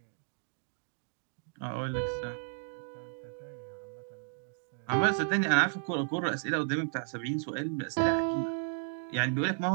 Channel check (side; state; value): left; silent; digital silence